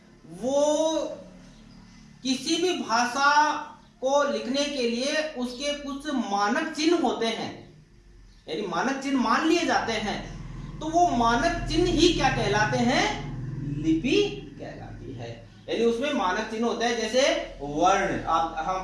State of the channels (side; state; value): both; identical; correlation 1.00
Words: वो किसी भी भाषा को लिखने के लिए उसके कुछ मानक चिन्ह होते हैं, यानी मानक चिन्ह मान लिए जाते हैं। तो वो मानक चिन्ह ही क्या कहलाते हैं, लिपि कहलाती है। यानी उसमें मानक चिन्ह होता है, जैसे वर्ण, आप